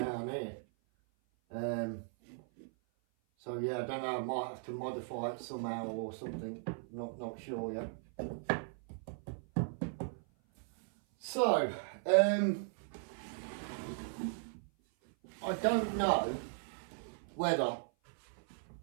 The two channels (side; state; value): left; silent; 53 dB below the other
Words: here. So yeah, I don't know, I might have to modify it somehow or something. Not sure yet. So, I don't know whether